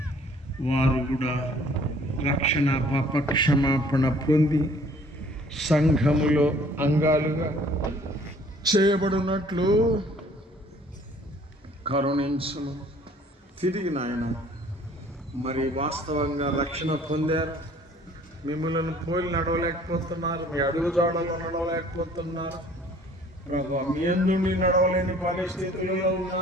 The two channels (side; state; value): both; normal; correlation 0.55